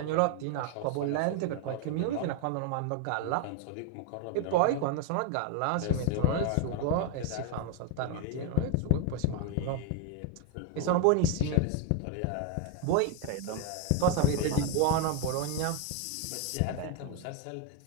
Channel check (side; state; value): both; different; correlation 0.01